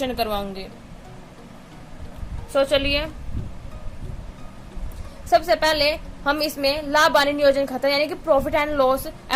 करवाऊंगी। चलिए सबसे पहले हम इसमें लाभ हानि नियोजन खाता यानी कि profit and loss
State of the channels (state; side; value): identical; both; correlation 1.00